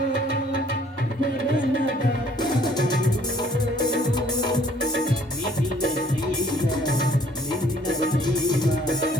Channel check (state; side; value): normal; both; correlation 0.60